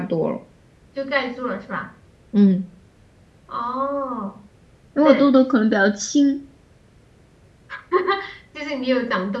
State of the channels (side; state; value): both; identical; correlation 1.00